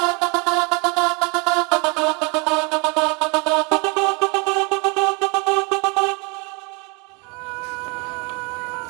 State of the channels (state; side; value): quieter; left; 31.0 dB